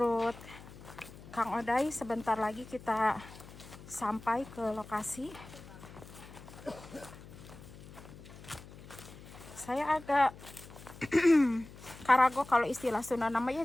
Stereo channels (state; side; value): noise; left; hum, 17 dB below the sound